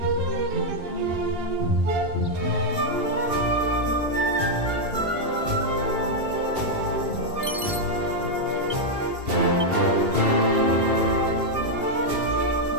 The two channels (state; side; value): late; left; 2.8 ms